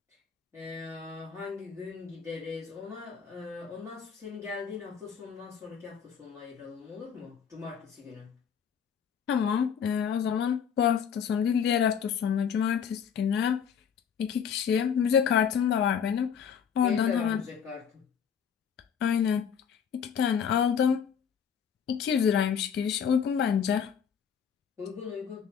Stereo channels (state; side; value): quieter; right; 7.5 dB